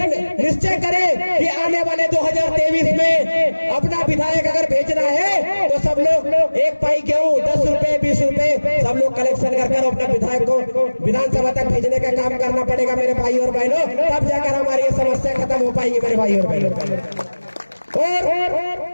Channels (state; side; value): inverted; both; correlation -1.00